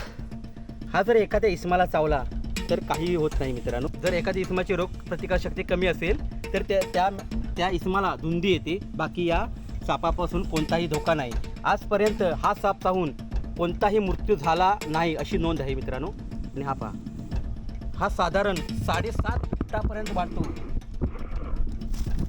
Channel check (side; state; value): both; identical; correlation 1.00